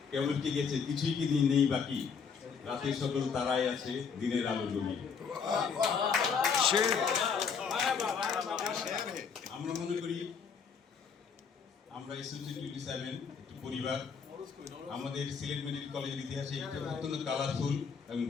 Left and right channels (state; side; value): quieter; right; 6.1 dB